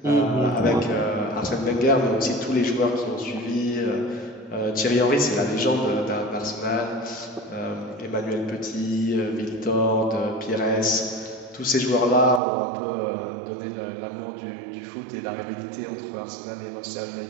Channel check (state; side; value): drops out; left; at 12.4 s